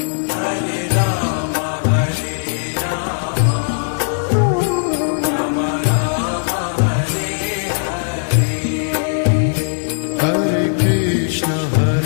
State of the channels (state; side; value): silent; right; digital silence